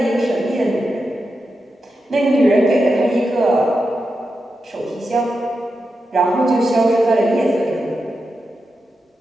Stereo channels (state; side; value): normal; both; correlation 0.88